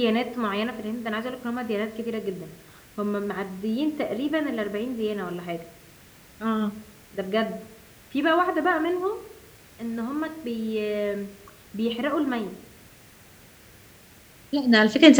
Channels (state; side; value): identical; both; correlation 1.00